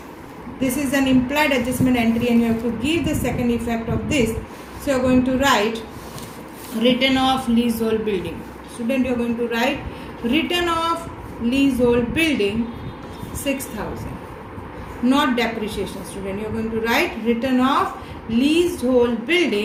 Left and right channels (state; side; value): identical; both; correlation 1.00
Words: This is an implied adjustment entry and you have to give the second effect of this. So you are going to write written off leasehold building. Student, you are going to write written off leasehold building 6,000. Not depreciation, student. You are going to write written off leasehold